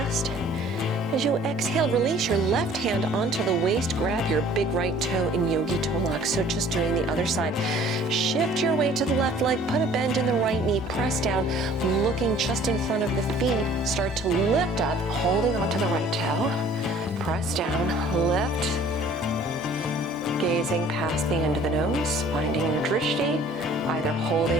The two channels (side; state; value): both; normal; correlation 0.53